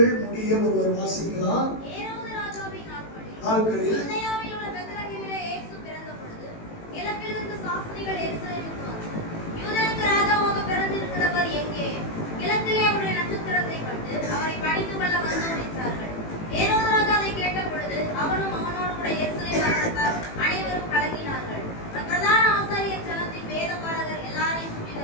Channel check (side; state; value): right; late; 18 ms